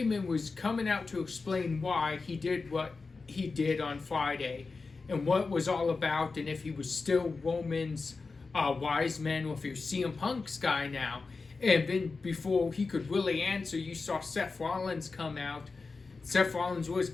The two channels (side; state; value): right; quieter; 4.2 dB